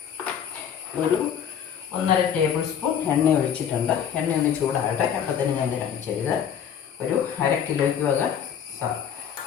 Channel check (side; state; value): right; quieter; 8.5 dB